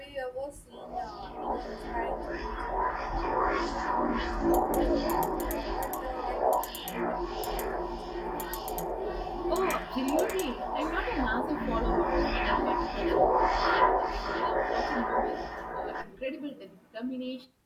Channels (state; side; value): identical; both; correlation 1.00